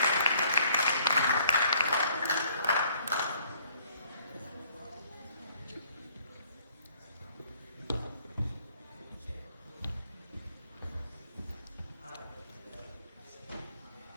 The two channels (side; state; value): both; inverted; correlation -0.62